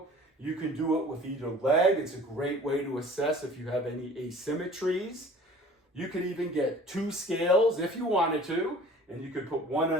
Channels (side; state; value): both; normal; correlation 0.47